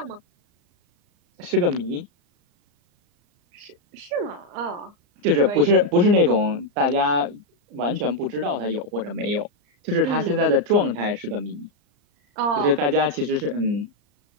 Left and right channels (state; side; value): late; left; 34 ms